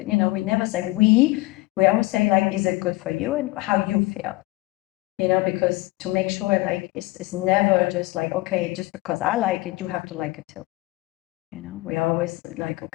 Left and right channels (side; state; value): right; quieter; 21.0 dB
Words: we never say we. We always say, like, is it good for you and how you feel? because to make sure like it's never just like, okay, just because I like it, you have to like it too. We always like,